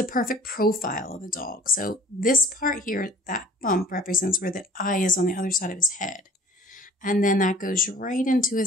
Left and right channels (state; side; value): normal; both; correlation 0.51